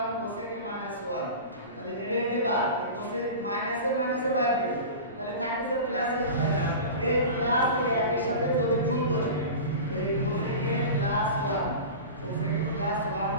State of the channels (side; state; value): both; inverted; correlation -0.31